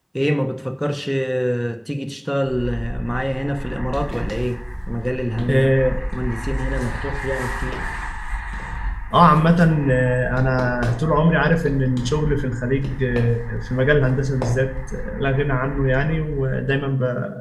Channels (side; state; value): both; identical; correlation 1.00